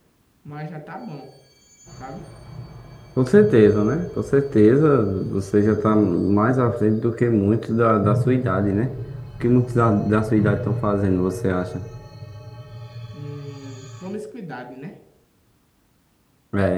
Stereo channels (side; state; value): both; identical; correlation 1.00